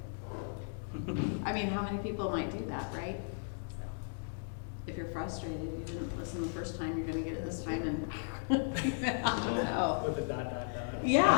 I mean, how many people might do that, right? If you're frustrated, you didn't listen the first time, you're gonna get it this time, and I don't know. With the dot.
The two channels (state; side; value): silent; right; digital silence